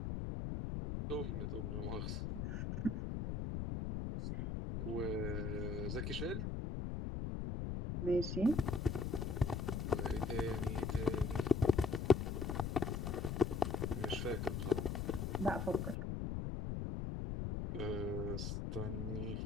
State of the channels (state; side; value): noise; left; rumble, 2 dB below the sound